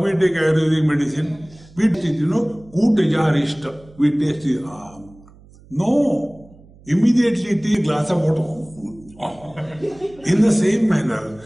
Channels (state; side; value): noise; right; hum, 25 dB below the sound